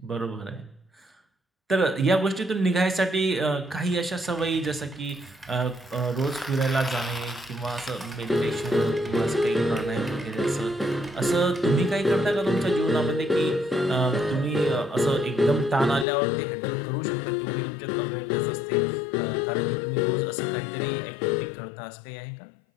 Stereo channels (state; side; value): drops out; right; at 16.1 s